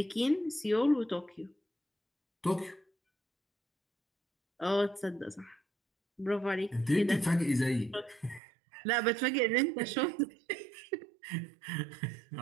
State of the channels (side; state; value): left; drops out; at 8.4 s